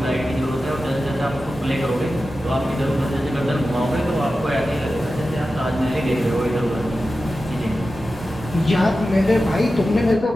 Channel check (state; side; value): normal; both; correlation 0.93